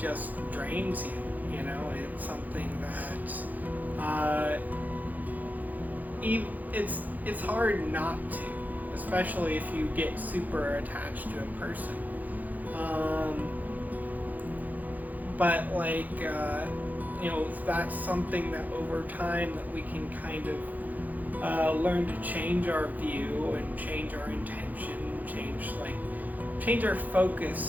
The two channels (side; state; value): left; late; 0.081 ms